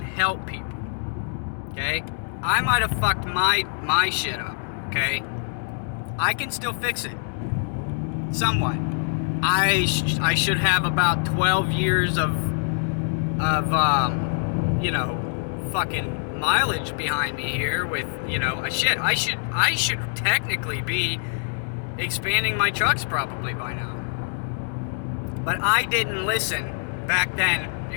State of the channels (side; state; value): right; silent; 62 dB below the other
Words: help people. Okay? I might have fucked my shit up. Okay? I can still fix it. Somewhat. I should have about 12 years of fucking mileage behind me here with, I should technically be expanding my trucks probably by now. But I didn't listen back